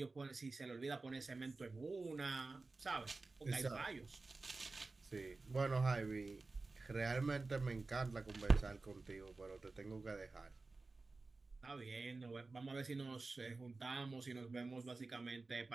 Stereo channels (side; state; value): left; quieter; 3.6 dB